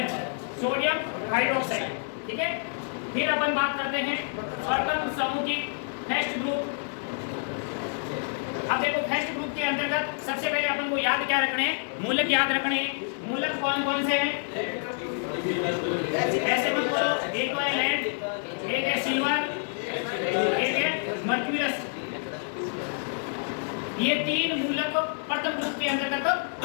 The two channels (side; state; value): right; silent; 59 dB below the other